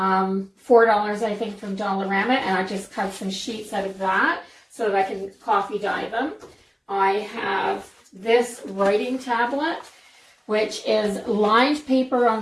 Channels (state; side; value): identical; both; correlation 1.00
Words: I think, from Dollarama, and I just cut some sheets out of that so that I can coffee dye them. I have this writing tablet, which is lined paper